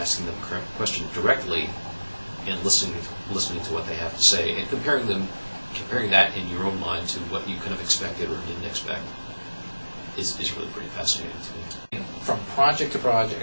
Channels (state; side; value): inverted; both; correlation -1.00